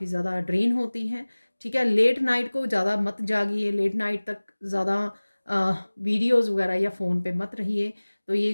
ज़्यादा ड्रेन होती है, ठीक है। लेट नाइट को ज़्यादा मत जागिए, लेट नाइट तक ज़्यादा वीडियोज़ वगैरह या फ़ोन पे मत रहिए। तो ये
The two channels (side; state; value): both; inverted; correlation -1.00